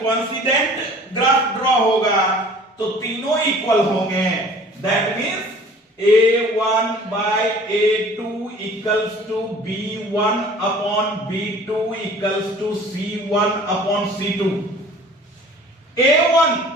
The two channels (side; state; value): both; normal; correlation 0.48